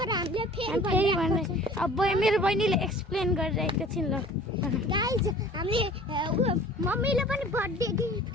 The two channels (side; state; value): both; normal; correlation 0.47